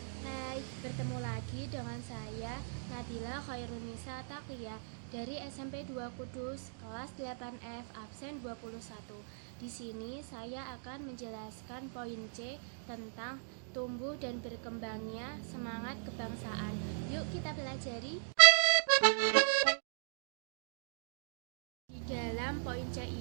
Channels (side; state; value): left; silent; digital silence